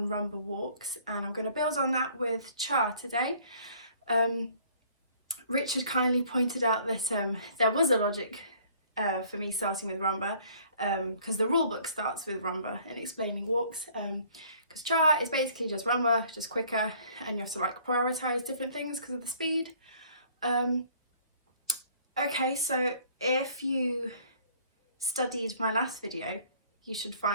walks, and I'm going to build on that with cha today. Richard kindly pointed out that there was a logic for me starting with rumba, because the rule book starts with rumba and explaining walks, because cha is basically just rumba, just quicker, and you have to like prioritize different things because of the speed. Okay, so if you studied my last video, you should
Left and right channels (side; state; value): both; inverted; correlation -0.57